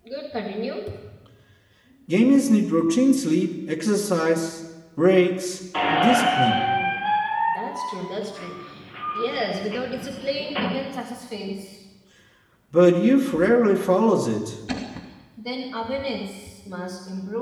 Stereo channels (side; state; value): both; identical; correlation 1.00